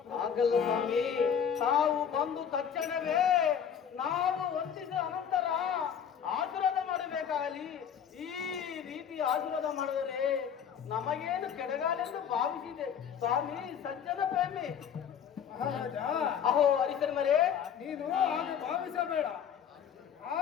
ಆಗಲ್ಲ ಸ್ವಾಮಿ, ತಾವು ಬಂದು ತಕ್ಷಣವೇ ನಾವು ವಂದಿಸಿದ ಅನಂತರ ಆಶೀರ್ವಾದ ಮಾಡಬೇಕಾಗಲಿ. ಈ ರೀತಿ ಆಶೀರ್ವಾದ ಮಾಡಿದರೆ ನಮಗೇನು ಕೆಡಗಾಲೆಂದು ಭಾವಿಸಿದೆ. ಸ್ವಾಮಿ ಸಜ್ಜನ ಪ್ರೇಮಿ. ಮಹಾರಾಜ, ಅಹೋ ಹರಿಚಂದ್ರೇ, ನೀನು ಹಾಗೆ ಭಾವಿಸಬೇಡ.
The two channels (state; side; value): quieter; right; 8.1 dB